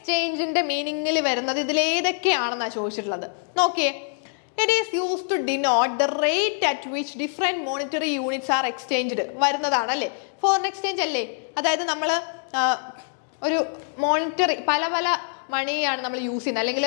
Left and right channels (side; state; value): right; silent; 62 dB below the other